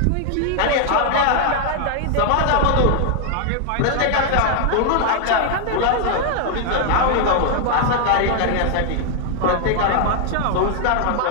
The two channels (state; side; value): different; both; correlation 0.00